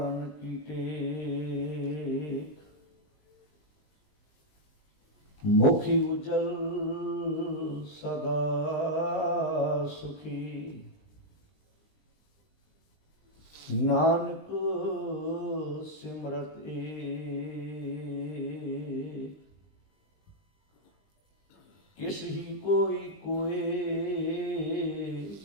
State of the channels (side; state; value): right; late; 20 ms